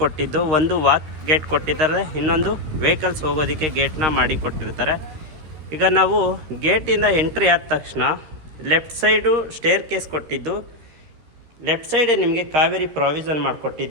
ಕೊಟ್ಟಿದ್ದು, ಒಂದು ವಾಕ್ ಗೇಟ್ ಕೊಟ್ಟಿದ್ದಾರೆ, ಇನ್ನೊಂದು ವೆಹಿಕಲ್ಸ್ ಹೋಗೋದಕ್ಕೆ ಗೇಟ್ನ ಮಾಡಿ ಕೊಟ್ಟಿರ್ತಾರೆ. ಈಗ ನಾವು ಗೇಟಿಂದ ಎಂಟ್ರಿ ಆದ ತಕ್ಷಣ ಲೆಫ್ಟ್ ಸೈಡು ಸ್ಟೇರ್ ಕೇಸ್ ಕೊಟ್ಟಿದ್ದು, ಲೆಫ್ಟ್ ಸೈಡೇ ನಿಮಗೆ ಕಾವೇರಿ ಪ್ರಾವಿಷನ್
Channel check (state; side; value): late; left; 13 ms